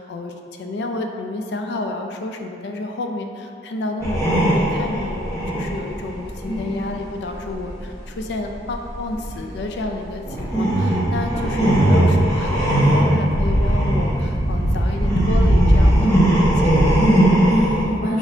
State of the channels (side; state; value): both; normal; correlation 0.78